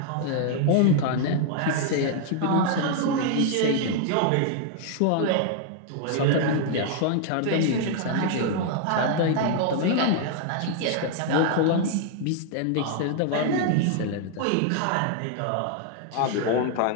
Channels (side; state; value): both; different; correlation 0.00